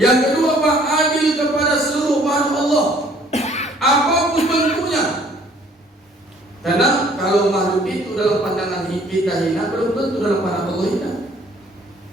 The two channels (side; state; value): both; normal; correlation 0.58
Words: Yang kedua Pak, adil kepada seluruh makhluk Allah. Apapun bentuknya. Karena kalau makhluk itu dalam pandangan kita hina, belum tentu dalam pandangan Allah hina.